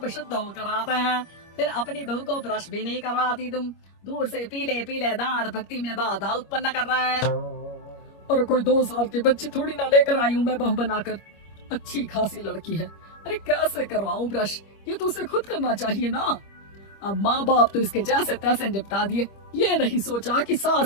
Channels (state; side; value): late; right; 25 ms